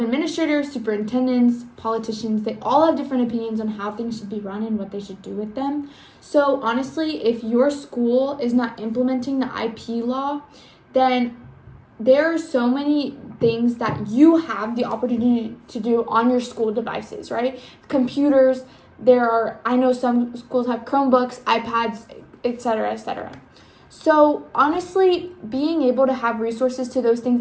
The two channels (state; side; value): identical; both; correlation 1.00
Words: superintendents, politicians, they all have different opinions on how things should be run and what they should do with them. So honestly, if your school is not implementing the IP law, then there are so many things that you have the opportunity to do on your school devices, right? Computers, I know some schools have Chromebooks, iPads, etc., etc. So honestly, being able to have resources to those things